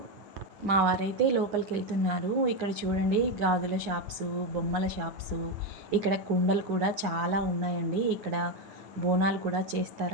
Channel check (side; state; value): left; late; 9.8 ms